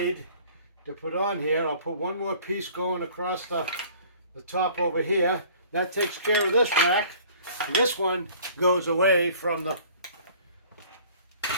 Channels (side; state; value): both; inverted; correlation -0.51